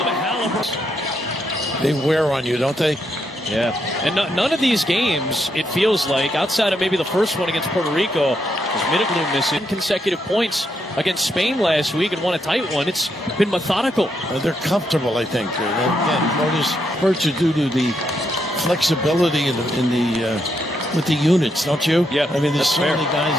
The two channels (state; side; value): normal; both; correlation 0.79